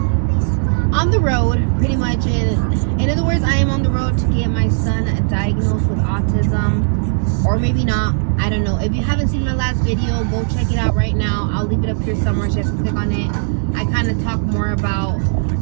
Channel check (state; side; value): silent; left; digital silence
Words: on the road pretty much. In other words, I am on the road to get my son diagnosed with autism, or maybe not, I don't know. If you haven't seen my last video, go check it out right now. I'll leave it up here somewhere, just click on it. I kind of talk more about